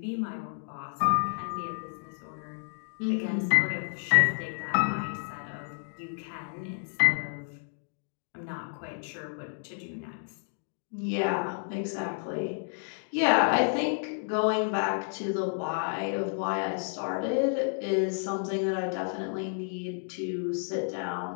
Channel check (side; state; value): right; silent; digital silence